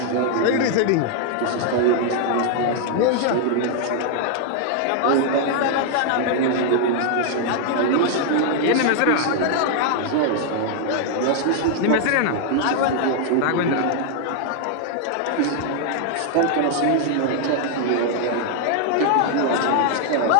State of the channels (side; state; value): both; different; correlation 0.00